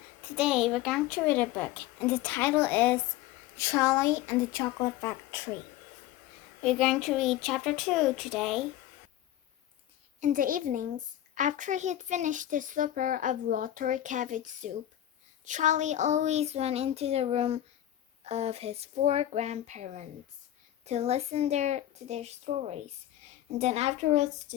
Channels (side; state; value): right; quieter; 13.1 dB